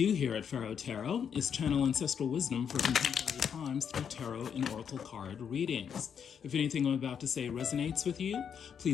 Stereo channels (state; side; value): quieter; right; 7.6 dB